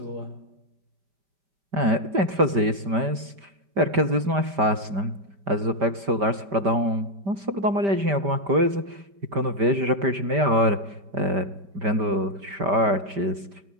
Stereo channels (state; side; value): late; left; 5.1 ms